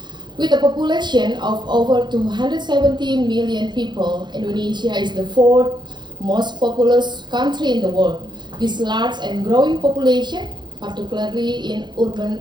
With a population of over 270 million people, Indonesia is the fourth most populous country in the world. This large and growing population, particularly in urban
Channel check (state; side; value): late; left; 0.21 ms